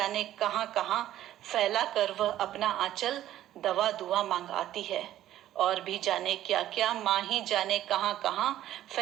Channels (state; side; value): quieter; left; 12.9 dB